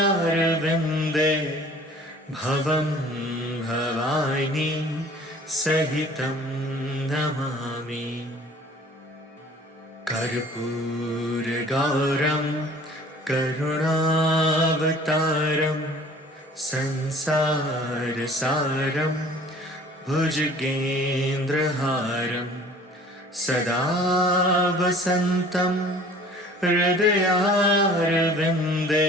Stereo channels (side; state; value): both; normal; correlation 0.50